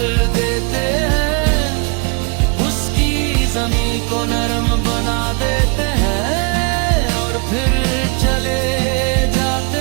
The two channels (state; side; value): quieter; left; 32.7 dB